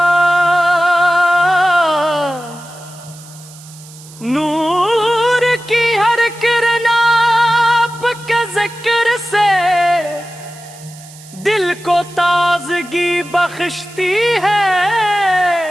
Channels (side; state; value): right; noise; hiss, 20 dB below the sound